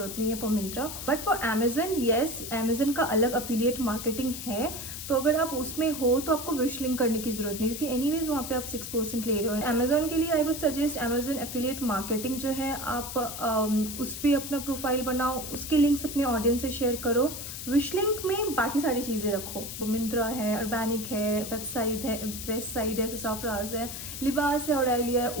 नहीं है for Myntra. But for Amazon, yes, Amazon का अलग अफिलिएट मार्केटिंग है। तो अगर आप उसमें हो तो आपको विश लिंक करने की जरूरत नहीं, क्योंकि एनीवेज वहाँ पे आप 6% ले रहे हो। अमेजन के लिए I would suggest Amazon affiliate marketing जो है, आप उस पर अपना प्रोफाइल बनाओ, उसके लिंक्स अपने ऑडियंस से शेयर करो। विश लिंक में बाकी सारी चीज़ें रखो, मिंत्रा है, अर्बैनिक है, वेबसाइट है, ससाफ्राज है, लिबास है, ऑरेलिया है।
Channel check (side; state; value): left; noise; hiss, 8 dB below the sound